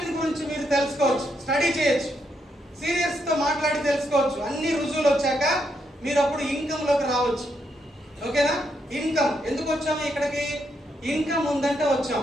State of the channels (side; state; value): both; normal; correlation 0.79